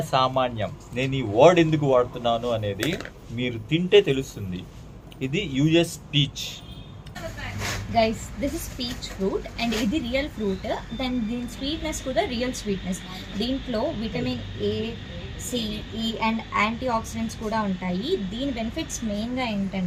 సామాన్యం. నేను ఈ వర్డ్ ఎందుకు వాడుతున్నాను అనేది మీరు తింటే తెలుస్తుంది. ఇది US peach. Guys, this is peach fruit and ఇది రియల్ ఫ్రూట్. దెన్ దీని స్వీట్నెస్ కూడా రియల్ స్వీట్నెస్. దీంట్లో విటమిన్ ఏ, సి, ఈ అండ్ యాంటీ ఆక్సిడెంట్స్ కూడా ఉంటాయి. దీని బెనిఫిట్స్ మెయిన్గా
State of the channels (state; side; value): identical; both; correlation 1.00